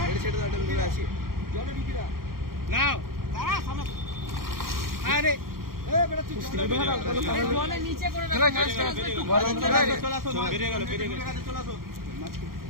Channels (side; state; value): left; late; 0.92 ms